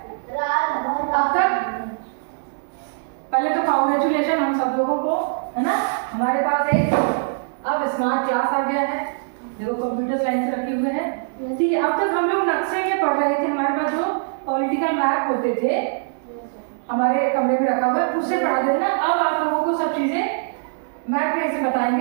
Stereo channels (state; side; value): silent; left; digital silence